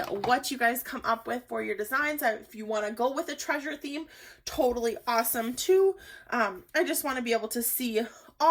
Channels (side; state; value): both; identical; correlation 1.00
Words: you guys come up with for your designs. If you want to go with a treasure theme, totally awesome too. I just want to be able to see